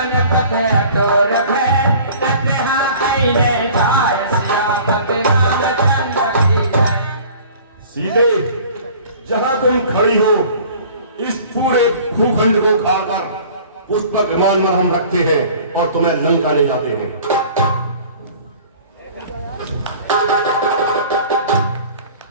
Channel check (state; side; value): inverted; both; correlation -0.47